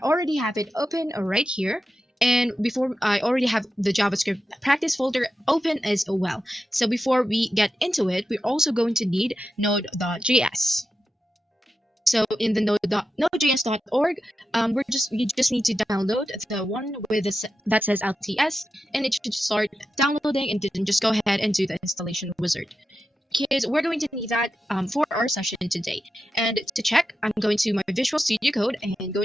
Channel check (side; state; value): both; normal; correlation 0.90